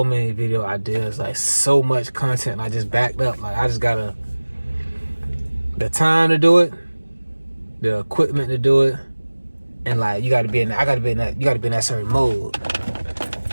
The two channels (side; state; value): both; inverted; correlation -1.00